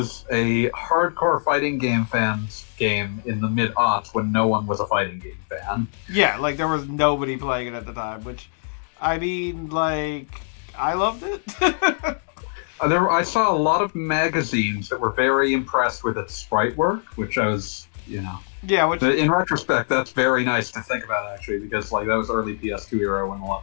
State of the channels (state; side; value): silent; right; digital silence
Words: a hardcore fighting game fans game in the mid-aughts when no one was a fighting game fan. Yeah, like, there was nobody playing it at the time, which, I mean, like, I loved it. I saw a lot of magazines that were very impressed with its sprite work, which I was, you know... Yeah, which... In retrospect, that's very nice to think about, actually, because, like, that was early PS2 era when a